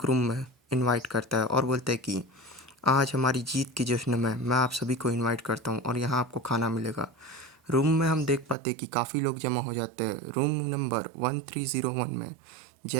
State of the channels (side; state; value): left; drops out; at 8.6 s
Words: रूम में इनवाइट करता है और बोलता है कि आज हमारी जीत के जश्न में मैं आप सभी को इनवाइट करता हूँ और यहाँ आपको खाना मिलेगा। रूम में हम देख पाते हैं कि काफ़ी लोग जमा हो जाते हैं। रूम नंबर 1301 में